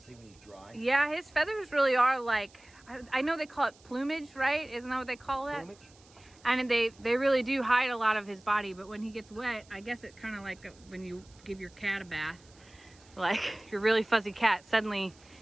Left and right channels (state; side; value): noise; right; hiss, 27 dB below the sound